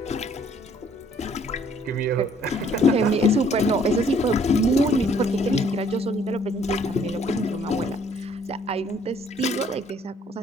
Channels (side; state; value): both; normal; correlation 0.61